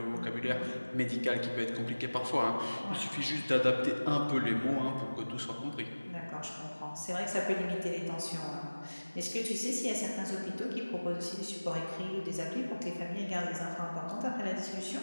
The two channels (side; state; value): both; inverted; correlation -1.00